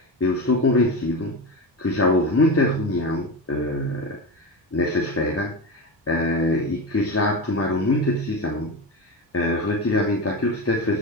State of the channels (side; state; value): both; normal; correlation 0.21